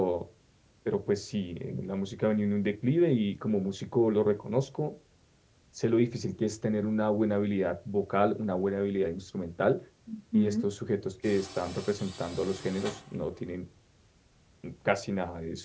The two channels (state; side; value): identical; both; correlation 1.00